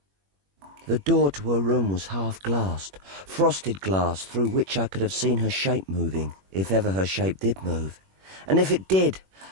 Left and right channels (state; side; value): late; left; 21 ms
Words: door to her room was half-glassed, frosted glass through which I could have seen her shape moving, if ever her shape did move. And if it did,